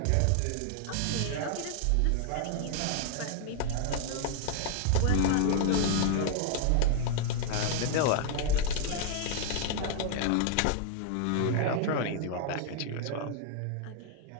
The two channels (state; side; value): different; both; correlation 0.00